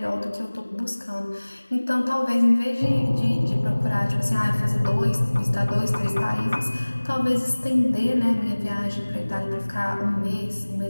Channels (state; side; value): inverted; both; correlation -1.00